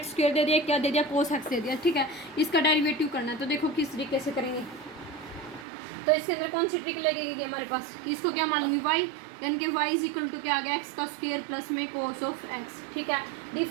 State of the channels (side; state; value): left; drops out; at 5.7 s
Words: स्क्वायर दे दिया, क्या दे दिया, कोस एक्स दे दिया, ठीक है। इसका डेरिवेटिव करना है, तो देखो किस तरीके से करेंगे। तो इसके अंदर कौन सी ट्रिक लगेगी हमारे पास, इसको क्या मान लूँगी वाई, यानी कि वाई इज इक्वल टू क्या आ गया, एक्स का स्क्वायर प्लस में कोस ऑफ एक्स, ठीक है।